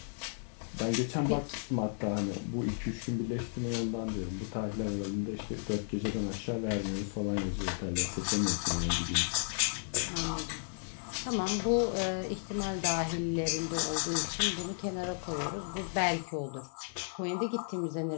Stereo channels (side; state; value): right; silent; digital silence